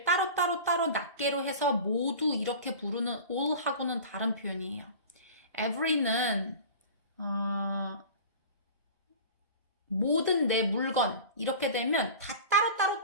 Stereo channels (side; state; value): both; inverted; correlation -0.37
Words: 따로 낱개로 해서 모두 이렇게 부르는 all하고는 다른 표현이에요. every는 모든 내 물건 이렇게 되면 다